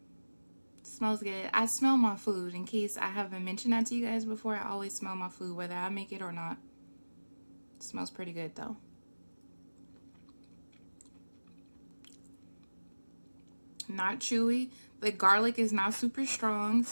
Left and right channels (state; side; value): inverted; both; correlation -1.00